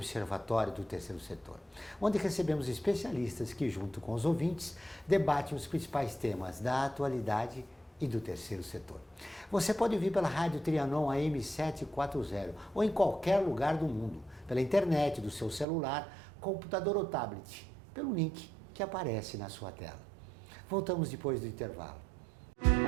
do Terceiro Setor, onde recebemos especialistas que, junto com os ouvintes, debatem os principais temas da atualidade e do terceiro setor. Você pode ouvir pela Rádio Trianon AM 740 ou em qualquer lugar do mundo, pela internet, do seu celular, computador ou tablet, pelo link que aparece na sua tela. Voltamos depois do intervalo.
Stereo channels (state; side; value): drops out; left; at 15.7 s